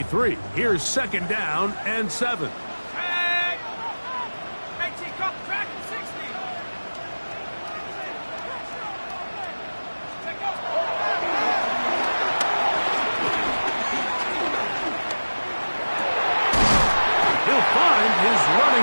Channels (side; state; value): both; inverted; correlation -1.00